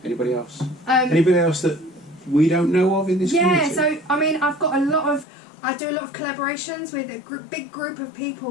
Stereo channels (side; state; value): right; drops out; at 5.2 s